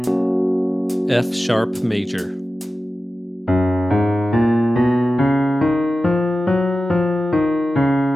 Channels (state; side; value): normal; both; correlation 0.94